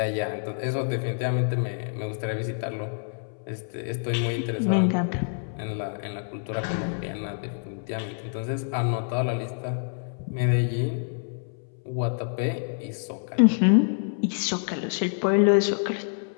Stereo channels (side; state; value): right; silent; 60 dB below the other